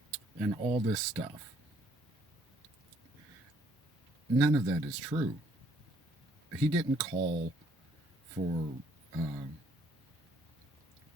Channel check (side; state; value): both; normal; correlation 0.65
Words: and all this stuff. None of that is true. He didn't call for uh,